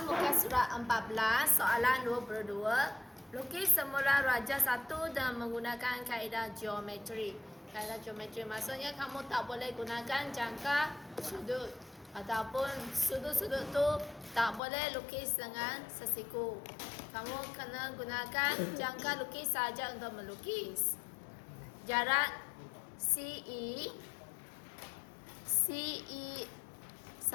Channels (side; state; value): right; drops out; at 14.6 s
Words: muka surat 14, soalan 22. Lukis semula raja satu dan menggunakan kaedah geometri. Kaedah geometri maksudnya kamu tak boleh gunakan jangka sudut. Ataupun sudut-sudut tu tak boleh lukis dengan sesiku. Kamu kena gunakan jangka lukis saja untuk melukis. Jarak CE